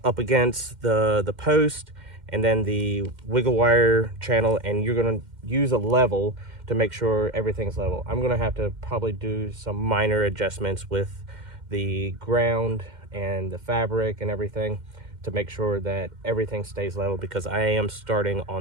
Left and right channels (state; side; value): late; left; 2.1 ms